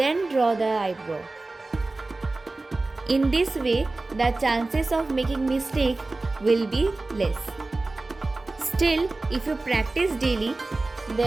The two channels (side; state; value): left; quieter; 3.2 dB